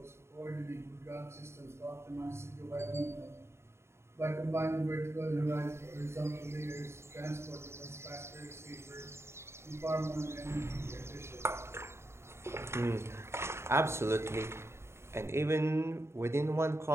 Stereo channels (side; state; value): left; late; 0.13 ms